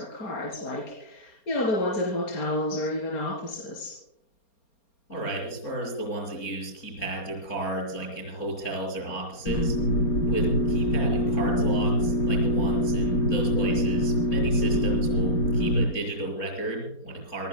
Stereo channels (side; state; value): right; late; 4.3 ms